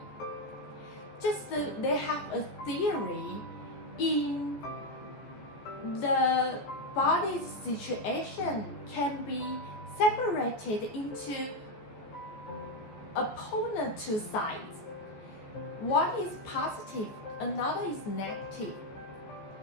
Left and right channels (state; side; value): late; right; 14 ms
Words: Just they have a theory in the body's situation can be separated into opponent two sides. One is positive, another is negative.